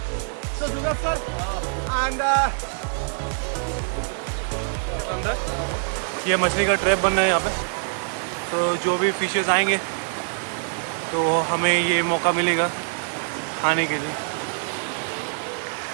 so do not sir. And ये मछली का ट्रैप बन रहा है यहाँ पे, तो जो भी फिशेस आएंगे तो हमें ये मौका मिलेगा खाने के लिए।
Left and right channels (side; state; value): left; silent; digital silence